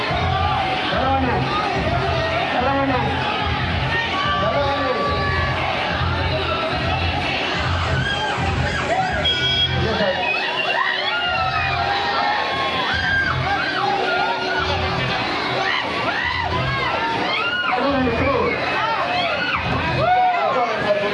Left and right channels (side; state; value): both; identical; correlation 1.00